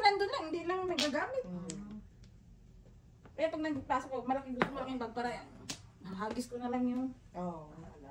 nandun lang, hindi lang nagagamit. Kaya pag nagpasok ko, malaking gusto malaking bag para hagis ko na lang yung... Oo, lahat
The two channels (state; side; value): identical; both; correlation 1.00